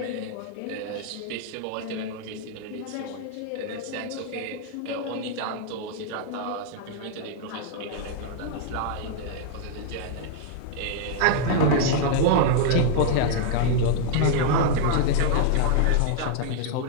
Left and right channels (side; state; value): both; different; correlation -0.01